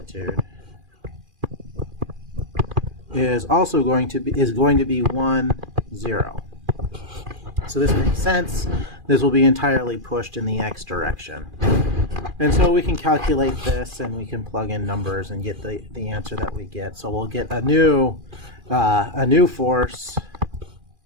is also going to be 1, 0. So this makes sense. This will be entirely pushed in the x direction. And so we can calculate this and we can plug in numbers and get the answer that we get. So we'll get a new force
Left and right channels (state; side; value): late; left; 2.4 ms